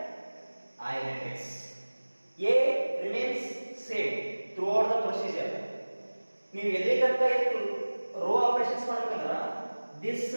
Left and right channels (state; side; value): inverted; both; correlation -1.00